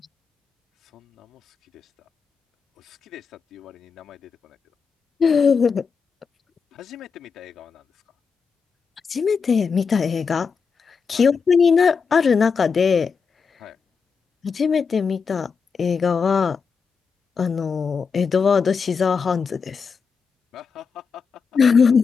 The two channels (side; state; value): right; quieter; 5.6 dB